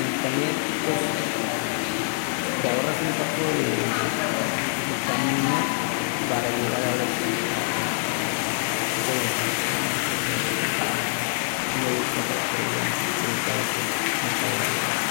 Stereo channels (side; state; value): right; silent; 62 dB below the other